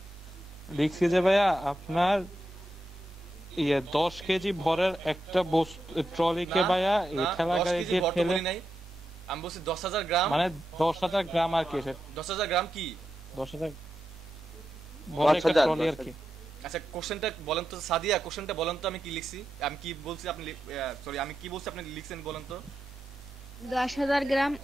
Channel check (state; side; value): normal; both; correlation 0.87